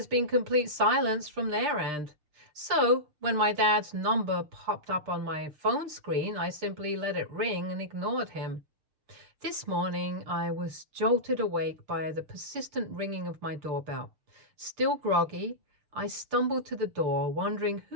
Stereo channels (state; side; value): late; left; 6.7 ms